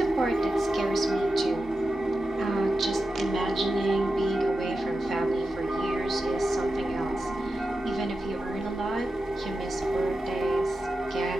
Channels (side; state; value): both; normal; correlation 0.91